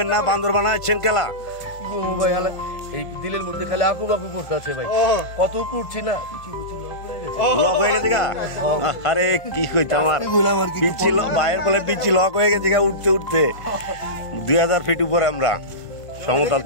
না? বান্দর বানাচ্ছেন খেলা ভাই হালে এই দিলের মধ্যে খালি আকু বাকু করতে আছে ভাই, কত উপরে উঠছি না, লক হয়ে গেছে গা। আরে কি কইতে আমার পিচ্ছি বাইরের বলে পিচ্ছি লক হয়ে গেছে গা উঠতে উঠতে। 2000 ফিট উপরে আমরা সমতল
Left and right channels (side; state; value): right; late; 1.5 ms